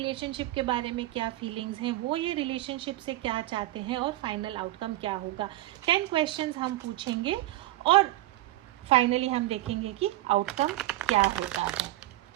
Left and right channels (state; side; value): quieter; left; 16.5 dB